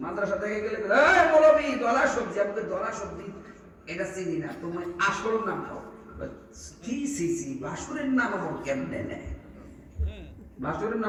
মাদ্রাসা থেকে গেলে এই মৌলবি দলা সবজি, আমাকে দলা সবজি এটা চিনি না, তোমার আসল নাম কও। কি সিসি বাসুরের নাম আমার কেমনে নেয়? বাসুরের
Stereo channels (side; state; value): both; identical; correlation 1.00